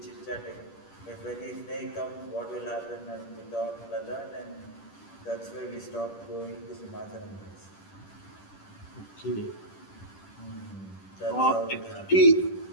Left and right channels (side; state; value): right; late; 10 ms